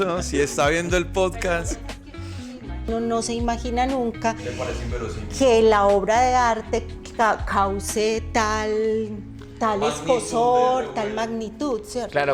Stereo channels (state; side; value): identical; both; correlation 1.00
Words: si está viendo el podcast. Uno no se imagina nunca Le parece inverosímil. que la obra de arte cause tal Magnitud escosor, de- tal magnitud, ¿cierto?